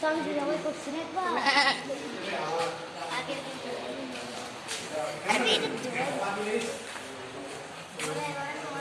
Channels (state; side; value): identical; both; correlation 1.00